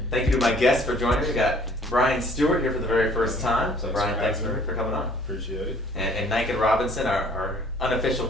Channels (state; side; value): normal; both; correlation 0.56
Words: thank you to my guests for joining me. We got Brian Stewart here for the very first time. So, Brian, thanks for coming on. Appreciate it. And Nican Robinson, our unofficial